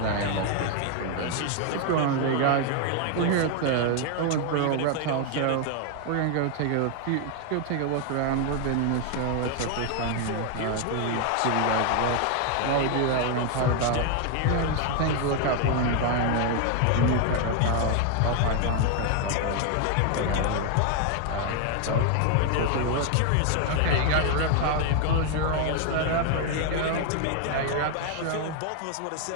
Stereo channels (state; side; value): different; both; correlation 0.00